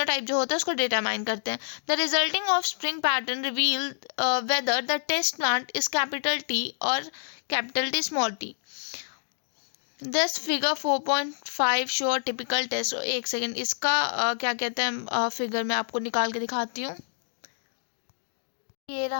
जो होता है उसको डिटरमाइन करते हैं। The resulting offspring pattern reveal whether the test plant is capital T और capital T small T. This figure 4.5 show typical test. एक सेकेंड, इसका क्या कहते हैं फिगर मैं आपको निकाल के दिखाती हूँ। ये रहा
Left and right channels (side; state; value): right; silent; digital silence